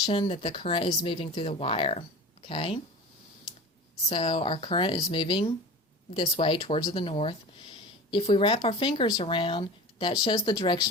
that the current is moving through the wire, okay? So our current is moving this way towards the north. If we wrap our fingers around, that shows the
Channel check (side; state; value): both; normal; correlation 0.34